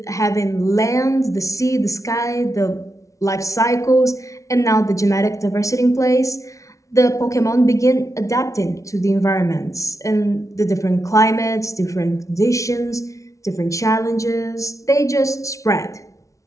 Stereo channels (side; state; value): right; late; 0.15 ms